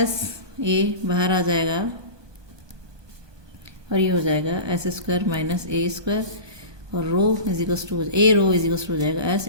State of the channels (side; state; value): left; late; 1.2 ms